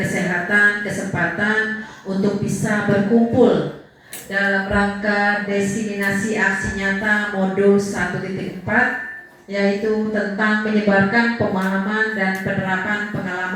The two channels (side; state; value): both; identical; correlation 1.00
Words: kesehatan, kesempatan untuk bisa berkumpul dalam rangka diseminasi aksi nyata modul 1.4, yaitu tentang menyebarkan pemahaman dan penerapan